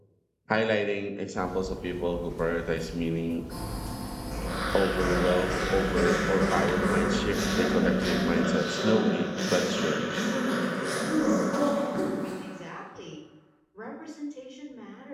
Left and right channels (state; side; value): identical; both; correlation 1.00